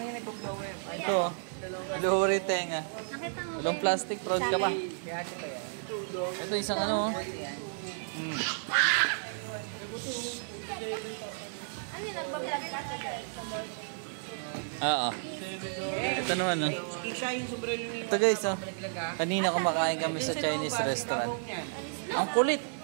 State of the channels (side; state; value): left; silent; 56 dB below the other